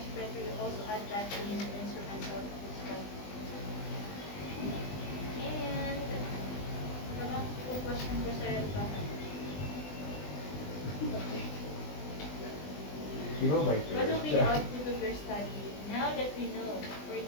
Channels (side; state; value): right; late; 20 ms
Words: better you also add that in the instruments of study. And the question ko sa what will be the output of your study? Now that we know, for